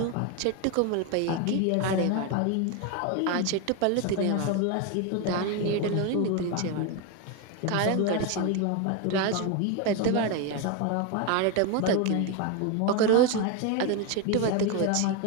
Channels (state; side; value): different; both; correlation 0.02